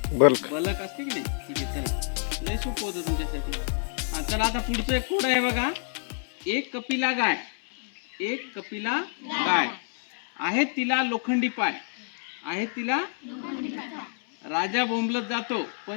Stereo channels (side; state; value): right; silent; 59 dB below the other